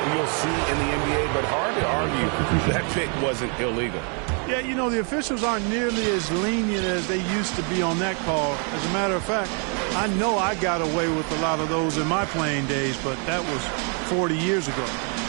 you'll see in the NBA, but hard to argue that pick wasn't illegal. Yeah, you know, the officials aren't nearly as lenient as they used to be on that call. As a matter of fact, I know I got away with a lot of those in my playing days, but that was 40 years ago.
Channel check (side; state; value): left; quieter; 39.2 dB